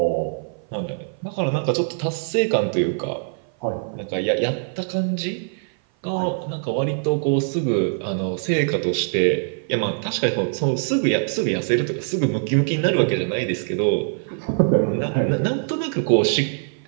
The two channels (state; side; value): silent; left; 56 dB below the other